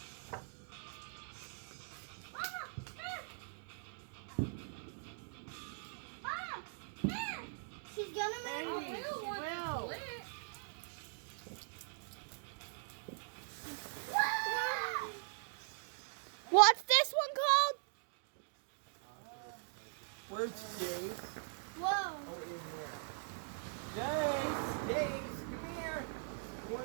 She's gonna make I Hey, will want well. to split. What's this one called? Where's Jace? Whoa. Oh, in here. Jace, come here. You want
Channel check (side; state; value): left; silent; digital silence